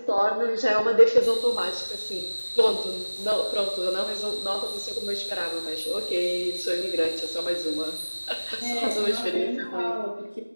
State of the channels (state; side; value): inverted; both; correlation -1.00